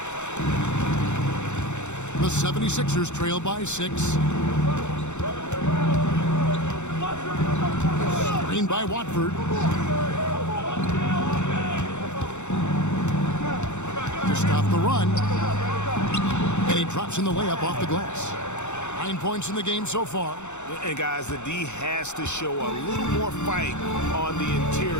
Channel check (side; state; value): right; late; 0.83 ms